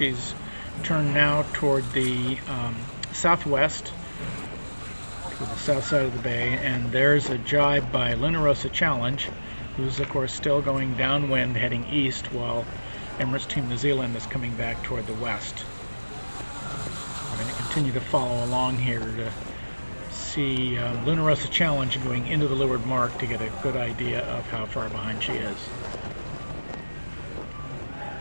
turned now toward the southwest, to the south side of the bay, and there's a jibe by Rossa Challenge, who's of course still going downwind heading east, while Emirates Team New Zealand is coming back toward the west. I'm going to continue to follow along here to see Rossa Challenge going into the leeward mark to get a good idea of how far behind she is.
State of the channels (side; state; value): both; inverted; correlation -1.00